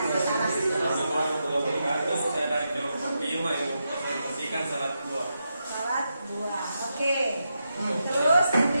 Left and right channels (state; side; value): inverted; both; correlation -0.86